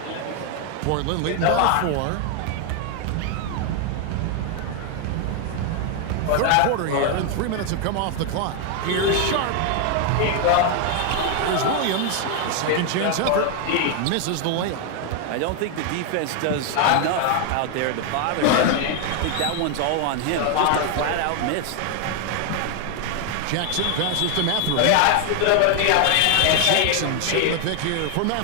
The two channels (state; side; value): different; both; correlation 0.01